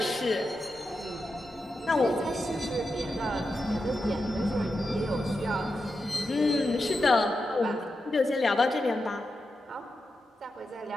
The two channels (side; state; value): both; normal; correlation 0.88